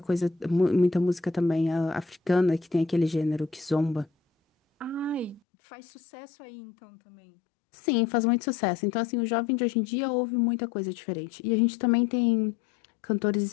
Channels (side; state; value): right; drops out; at 5.4 s